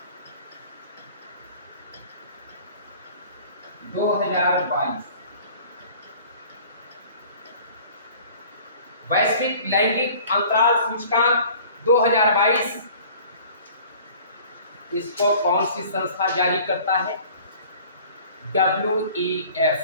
2022, वैश्विक लैंगिक अंतराल सूचकांक 2022, इसको कौन सी संस्था जारी करता है? WEF,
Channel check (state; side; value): inverted; both; correlation -0.48